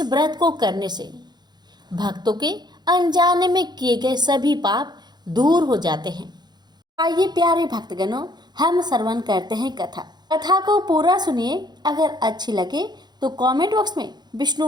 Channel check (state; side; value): late; left; 0.21 ms